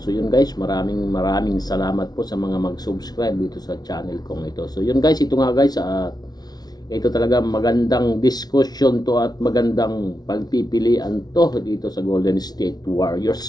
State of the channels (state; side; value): late; right; 0.19 ms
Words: yun guys, maraming salamat po sa mga mag-subscribe dito sa channel kong ito. So yun guys, ito nga guys, ito talaga magandang discussion to at magandang pagpipilian to dito sa Golden State